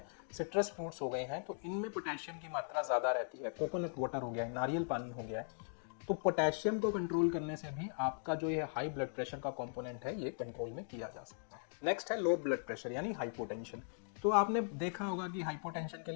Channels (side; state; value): right; silent; digital silence